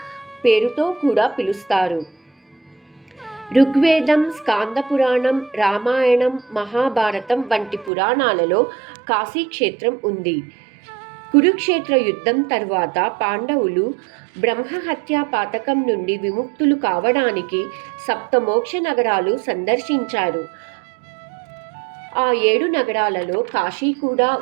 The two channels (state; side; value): drops out; left; at 7.9 s